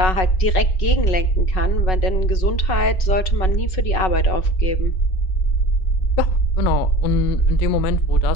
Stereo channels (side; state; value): right; late; 5.4 ms